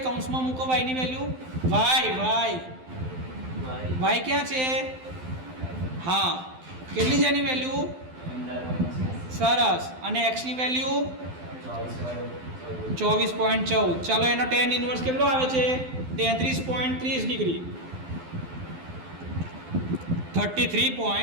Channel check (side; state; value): left; late; 12 ms